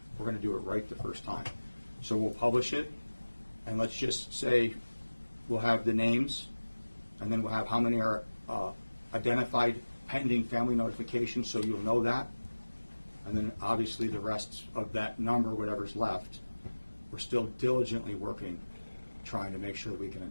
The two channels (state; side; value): inverted; both; correlation -1.00